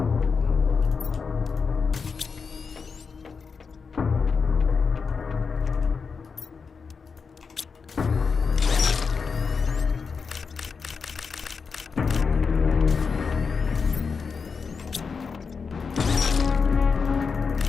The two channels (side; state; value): right; quieter; 5.3 dB